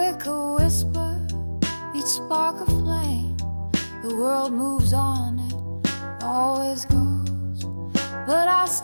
a whisper, each spark a flame. The world moves on, it always goes, but I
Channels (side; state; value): both; inverted; correlation -1.00